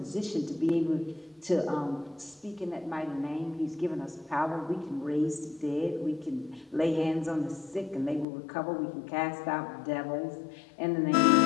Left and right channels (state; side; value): drops out; right; at 8.2 s